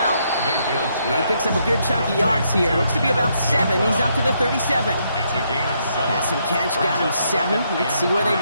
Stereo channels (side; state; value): both; inverted; correlation -0.75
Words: He picks up a good chunk of yards here. Looks to be about 7. He's up to the 37. Pass and catch got him 7. Let's see where they